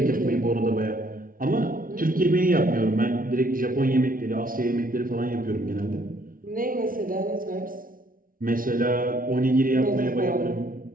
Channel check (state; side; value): late; left; 0.41 ms